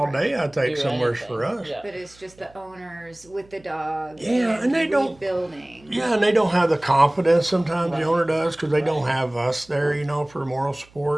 day, I think, Do somewhere anything. for us. Yeah. But it's just the owners with the dog. Yeah, and they don't- rebuilding. Yeah, and they don't have the confidence sometimes the Right. owner does because they don't Right. have us there, for moral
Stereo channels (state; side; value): noise; right; hum, 27 dB below the sound